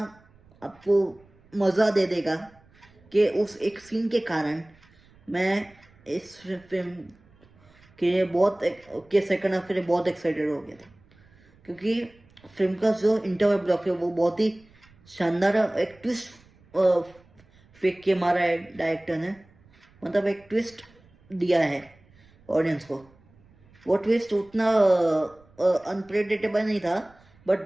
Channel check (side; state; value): right; noise; rumble, 29 dB below the sound